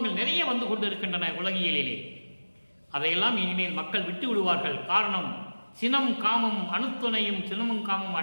நிறைய வந்து கொண்டு இருக்கின்றன உலகியலிலே. அதையெல்லாம் இனிமேல் மக்கள் விட்டு விடுவார்கள். காரணம், சினம் காமம் அணுத்துணையும் சினமும் காமம்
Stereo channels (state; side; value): inverted; both; correlation -1.00